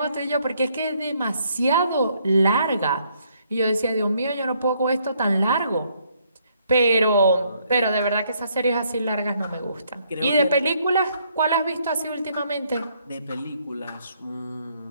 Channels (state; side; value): inverted; both; correlation -0.69